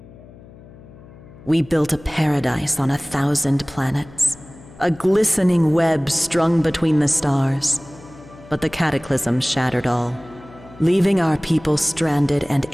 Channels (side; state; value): left; noise; hum, 21 dB below the sound